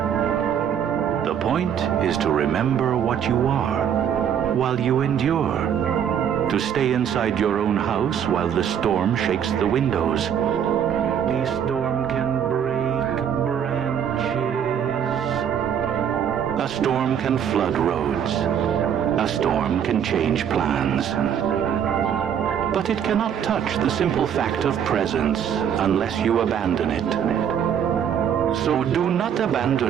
The point is to remember what you are while you endure. To stay inside your own house while the storm shakes the windows. The storm can break branches. A storm can flood roads. A storm can change plans. But it cannot touch the simple fact of presence unless you abandon it. So do not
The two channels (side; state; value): left; quieter; 8.6 dB